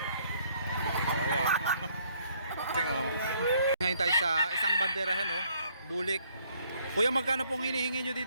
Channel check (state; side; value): inverted; both; correlation -0.65